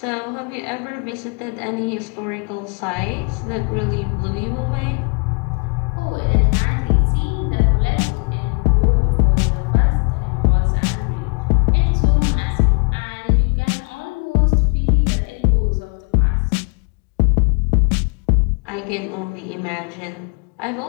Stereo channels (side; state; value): right; quieter; 36.5 dB